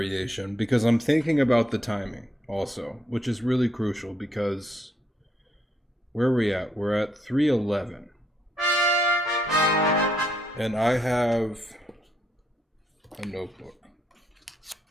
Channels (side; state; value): both; normal; correlation 0.74